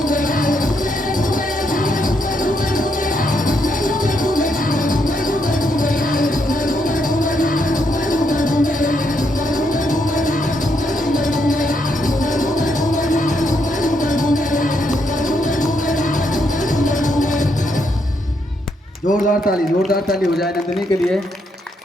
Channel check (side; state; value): both; normal; correlation 0.77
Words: जोरदार ताली हो जाए नंदिनी के लिए।